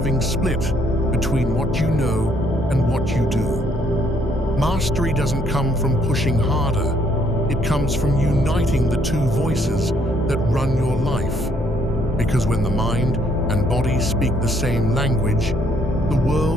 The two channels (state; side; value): normal; both; correlation 0.68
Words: split between what you know and what you do. Mastery doesn't come from pushing harder. It comes from uniting the two voices that run your life. Because when the mind and body speak the same language, the